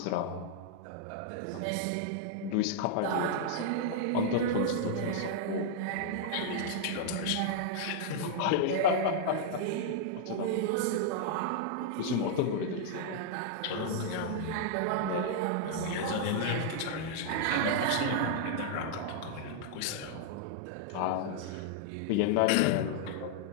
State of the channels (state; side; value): different; both; correlation -0.01